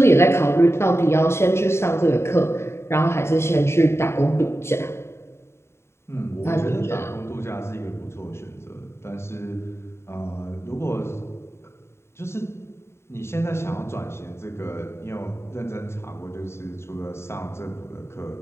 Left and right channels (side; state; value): right; late; 0.13 ms